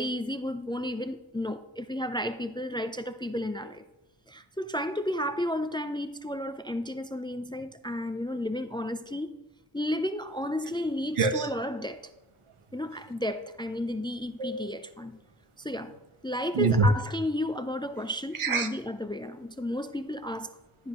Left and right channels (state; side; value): normal; both; correlation 0.52